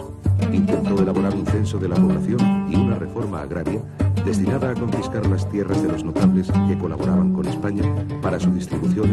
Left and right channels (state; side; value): identical; both; correlation 1.00